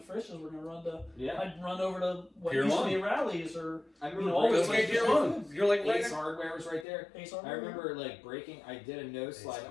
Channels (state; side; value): drops out; right; at 6.9 s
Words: Frisch's, we're going to run to... Yeah. I'd run over to what Pier used to 1. be Rallies, or... I remember all the Pier places. 1. You're like right Ace Hardware was right there. Ace Hardware. I remember, like, breaking, I did a nose slide